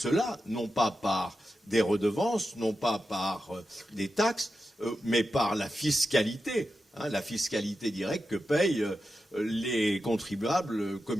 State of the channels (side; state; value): both; normal; correlation 0.90